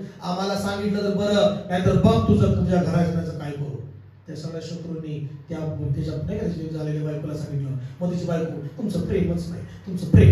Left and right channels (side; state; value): both; identical; correlation 1.00